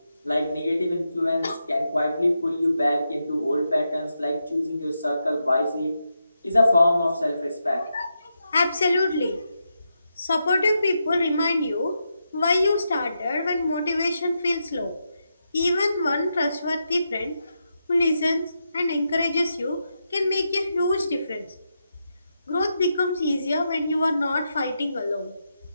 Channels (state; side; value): inverted; both; correlation -0.85